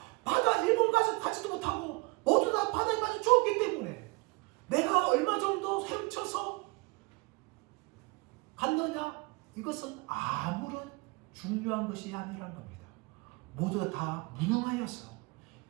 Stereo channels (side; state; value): left; quieter; 26.4 dB